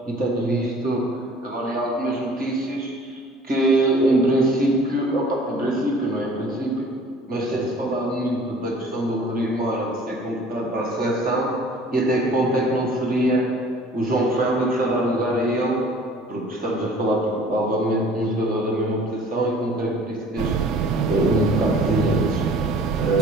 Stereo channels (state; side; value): normal; both; correlation 0.50